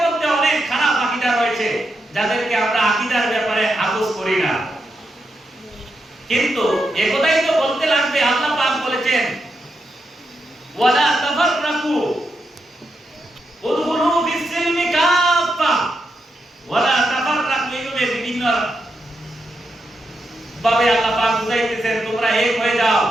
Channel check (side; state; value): both; normal; correlation 0.84